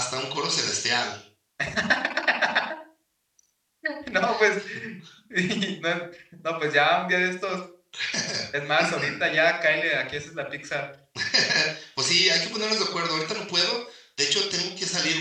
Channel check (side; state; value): both; identical; correlation 1.00